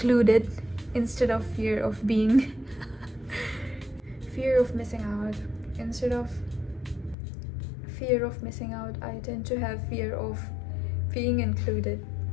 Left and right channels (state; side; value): drops out; right; at 7.2 s